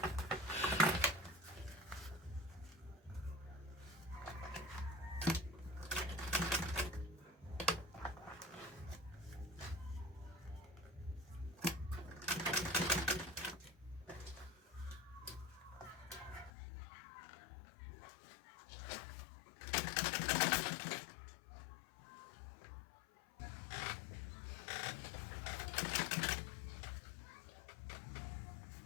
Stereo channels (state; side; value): drops out; right; at 16.5 s